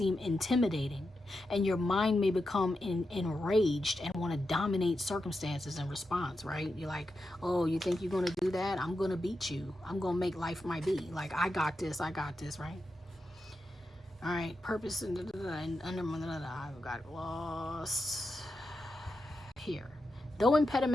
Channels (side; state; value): both; normal; correlation 0.88